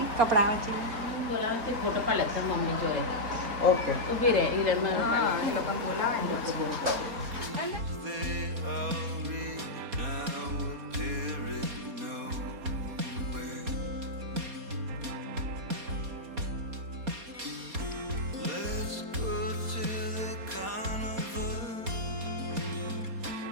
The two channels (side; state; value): left; late; 4.2 ms